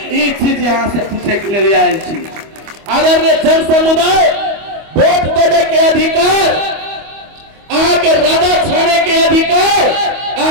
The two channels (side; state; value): left; late; 25 ms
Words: ई चीज यहाँ से पूछे के लिए आयल छी। आदरणीय जन समुदाय, वोट देने के अधिकार, आके राजा छाने के अधिकार,